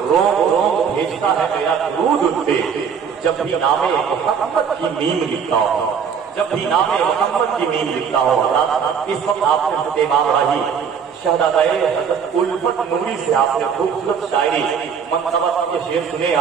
روم روم بھیجتا ہے میرا درود ان پہ جب بھی نام محمد کی میم لکھتا ہوں جب بھی نام محمد کی میم لکھتا ہوں اس وقت آپ نے امام راہی شہزادہ حضرت الفت نوری سے آپ نے خوبصورت شاعری منصبت کے شعر سنے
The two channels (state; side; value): quieter; left; 6.9 dB